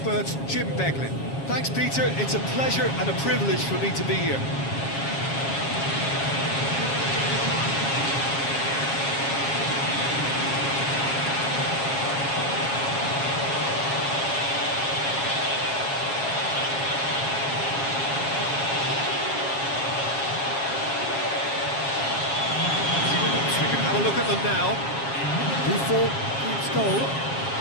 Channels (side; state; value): right; late; 7.3 ms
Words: Jim Beglin. Thanks, Peter. It's a pleasure and a privilege for me to be here. Have a look at them now. Buffon keeps goal.